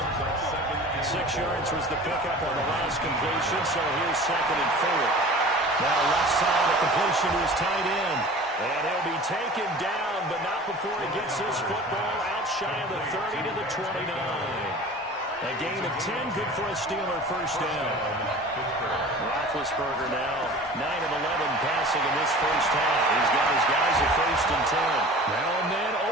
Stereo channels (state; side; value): normal; both; correlation 0.41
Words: yards was the pickup on the last completion, so here's 2nd and 4. Now left side, a completion to his tight end. And he'll be taken down, but not before he gets this football out shy of the 30 to the 29. A gain of 10, good for a Steeler first down. Roethlisberger now 9 of 11 passing in this first half. He's got his guys at 1st and 10. Now and then